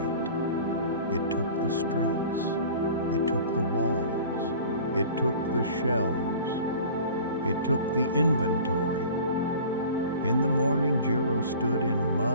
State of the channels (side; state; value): both; inverted; correlation -0.43